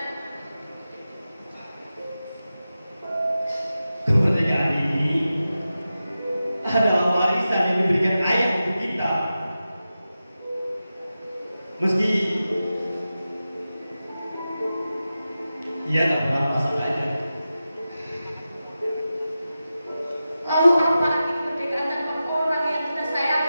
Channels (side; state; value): both; inverted; correlation -0.93